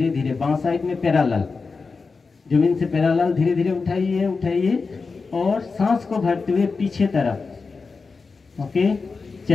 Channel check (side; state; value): right; quieter; 4.5 dB